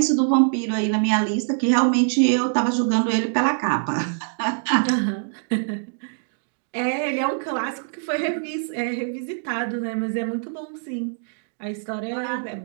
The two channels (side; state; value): left; silent; digital silence